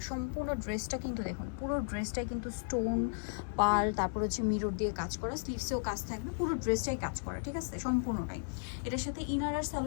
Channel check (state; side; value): silent; right; 55 dB below the other